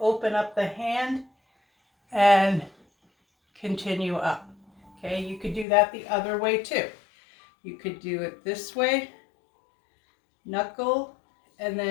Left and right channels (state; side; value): drops out; right; at 5.7 s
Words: open up the hand and continue up. Okay, you could do that the other way too. You could do it this way, knuckle, and